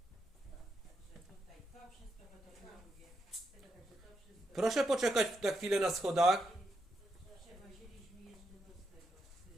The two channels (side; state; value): both; normal; correlation 0.82